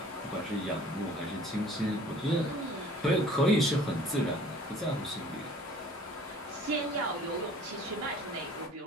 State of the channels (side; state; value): both; normal; correlation 0.50